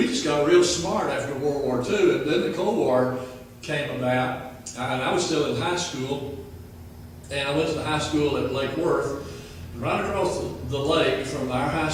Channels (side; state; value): both; identical; correlation 1.00